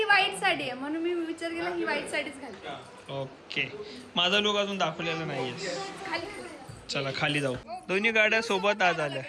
व्हाईट साडी आहे, म्हणून मी विचार केला ही व्हाईट साडीच घालते. ओके माझा लुक अजून दाखवलेला नाहीये. खाली चला खाली जाऊ. दोन्ही गाड्या सोबत आज आल्या.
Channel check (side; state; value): both; identical; correlation 1.00